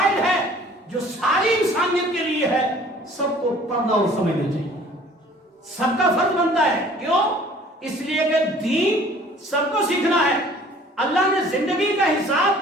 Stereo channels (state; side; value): normal; both; correlation 0.52